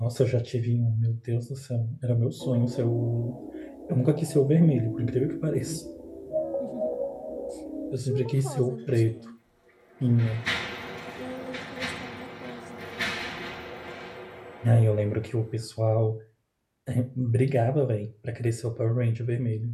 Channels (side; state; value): both; identical; correlation 1.00